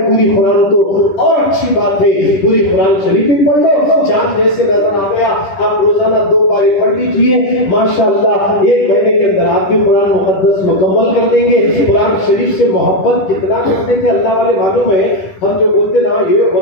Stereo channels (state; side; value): late; right; 10 ms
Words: پوری قرآن تو اور اچھی بات ہے، پوری قرآن شریف بھی پڑھ لو، چاند جیسے نظر آ گیا آپ روزانہ 2 پارے پڑھ لیجئے، ماشاءاللہ 1 مہینے کے اندر آپ بھی قرآن مقدس مکمل کر دیں گے۔ قرآن شریف سے محبت کتنا کرتے تھے اللہ والے معلوم ہے، ہم جو بولتے نا یہ